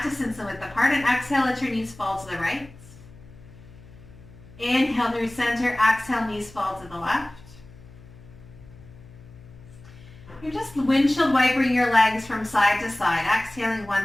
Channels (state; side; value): noise; left; hum, 21 dB below the sound